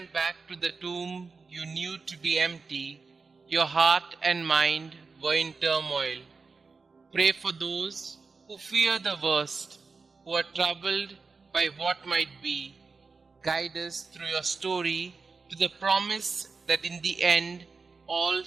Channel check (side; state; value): left; quieter; 4.5 dB